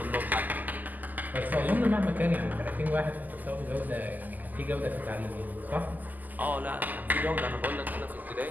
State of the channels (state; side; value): late; left; 0.083 ms